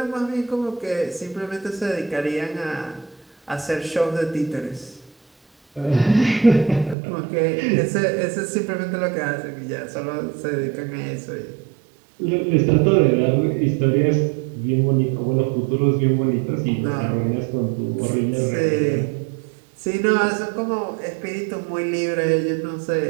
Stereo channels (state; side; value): drops out; left; at 7.0 s